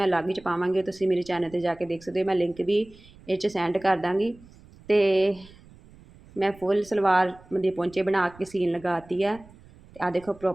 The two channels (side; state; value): right; noise; rumble, 24 dB below the sound